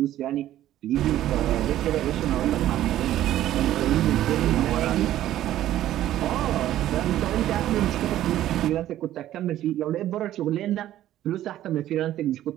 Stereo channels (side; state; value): left; quieter; 13.1 dB